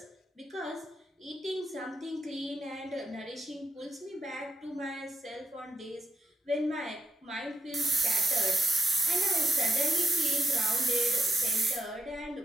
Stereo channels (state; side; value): normal; both; correlation 0.82